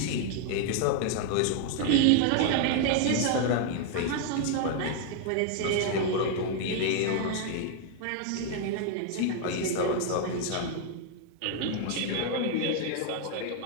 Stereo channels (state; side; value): different; both; correlation 0.00